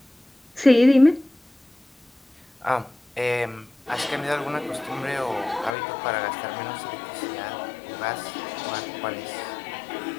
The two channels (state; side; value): drops out; right; at 5.8 s